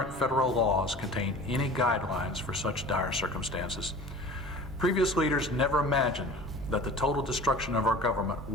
federal laws contain any guidelines for such dire circumstances. Previous leaders never imagined that the total destruction of our government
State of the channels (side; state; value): both; normal; correlation 0.40